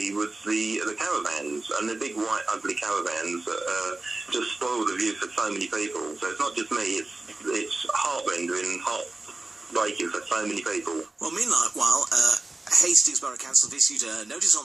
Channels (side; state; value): left; quieter; 3.1 dB